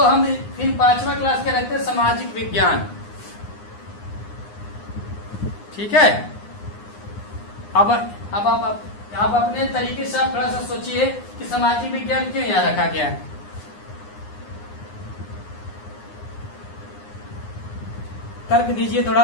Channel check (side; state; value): right; late; 9.7 ms